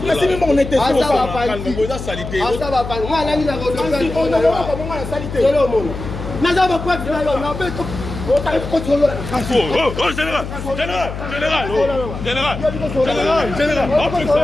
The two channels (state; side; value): noise; left; hum, 8 dB below the sound